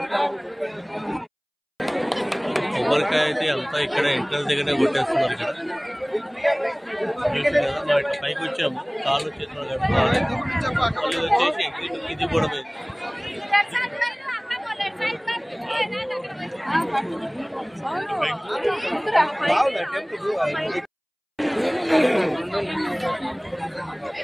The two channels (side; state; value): both; identical; correlation 1.00